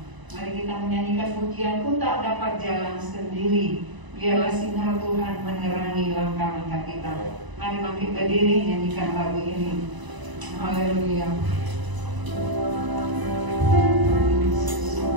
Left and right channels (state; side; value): late; left; 1.0 ms